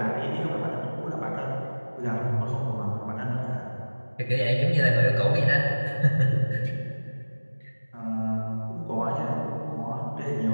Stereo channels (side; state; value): both; inverted; correlation -1.00